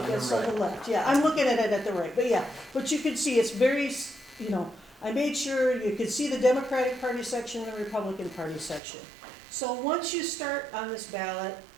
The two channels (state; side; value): drops out; left; at 8.8 s